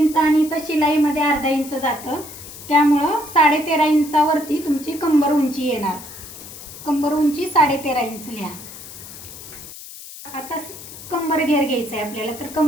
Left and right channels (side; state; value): left; noise; hiss, 14 dB below the sound